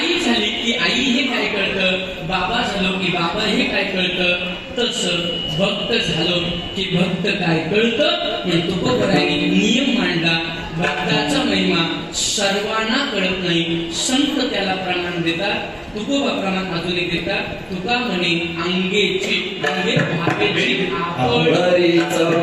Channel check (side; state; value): both; identical; correlation 1.00